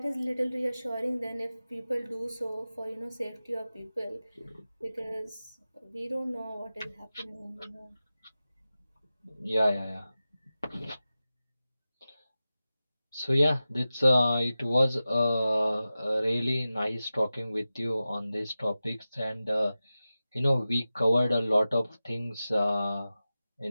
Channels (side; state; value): both; inverted; correlation -0.95